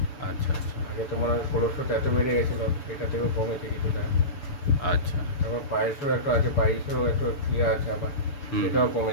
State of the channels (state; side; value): late; right; 6.8 ms